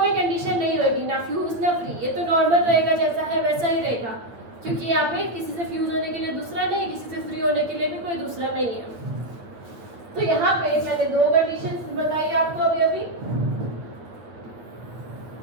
कंडीशन नहीं होगी, ना फ्यूज ना फ्री, ये तो नॉर्मल रहेगा, जैसा है वैसा ही रहेगा, क्योंकि यहाँ पे किसी से फ्यूज होने के लिए दूसरा नहीं, किसी से फ्री होने के लिए भी कोई दूसरा नहीं है। तो यहाँ पे मैंने दो कंडीशन बताई आपको अभी,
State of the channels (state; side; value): late; left; 8.7 ms